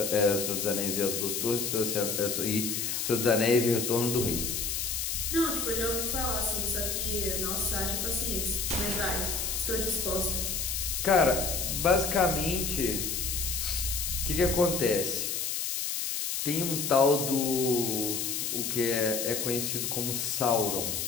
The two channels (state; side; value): noise; left; hiss, 1 dB below the sound